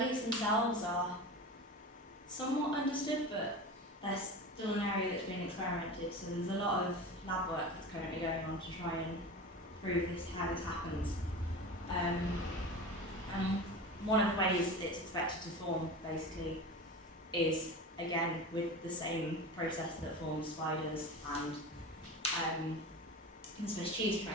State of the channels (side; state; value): both; normal; correlation 0.30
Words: themselves are somewhat understood, but they're still an area that's been experimented, so there's a lot of lab work that's currently going on to try and prove how this happens. And one of the ways it's expected to form, basically, is, again, with the same process that forms spiders and the Swiss cheese